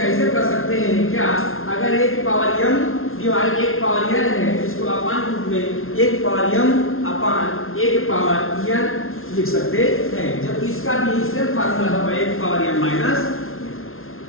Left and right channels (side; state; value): right; late; 0.61 ms